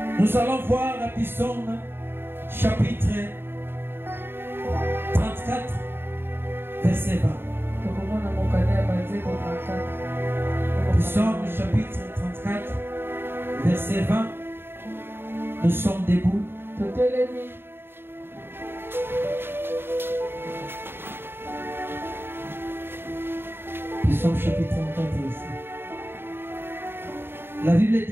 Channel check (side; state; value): left; late; 0.11 ms